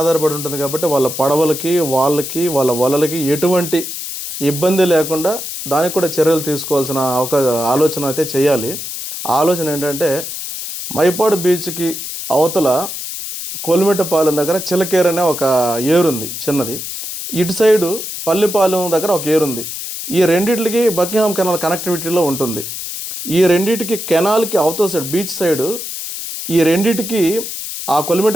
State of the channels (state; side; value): noise; left; hiss, 7 dB below the sound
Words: ఉంటుంది కాబట్టి వాళ్ళ పడవలకి వాళ్ళ వలలకి ఎటువంటి ఇబ్బంది లేకుండా దానికి కూడా చర్యలు తీసుకోవాల్సిన ఆలోచన అయితే చేయాలి. ఆలోచన ఏంటంటే మైపాడు బీచ్కి అవతల కొలిమెట్టపాలెం దగ్గర చిలకేరు అనే ఒక ఏరుంది చిన్నది, ఇటు సైడు పల్లిపాలెం దగ్గర ఒక ఏరుంది. ఈ రెండింటికి బకింగ్హామ్ కెనాల్ కనెక్టివిటీలో ఉంటుంది. ఈ రెండింటికి కెనాల్కి అవతల సైడ్ బీచ్ సైడు ఈ రెండింటికి ఆ